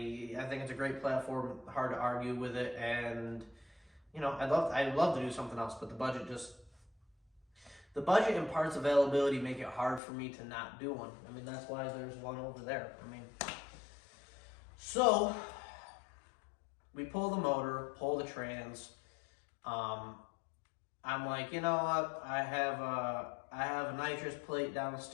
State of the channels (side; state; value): right; drops out; at 10.0 s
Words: think it's a great platform, hard to argue with it, and I'd love to do something else, but the the budget and parts availability make it hard for me to not do one. I mean, that's why there's one over there. I mean, so we pull the motor, pull the trans. I'm like, you know what? I have a nitrous plate